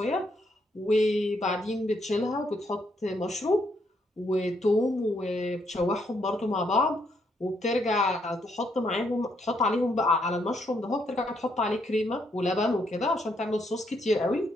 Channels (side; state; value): both; normal; correlation 0.74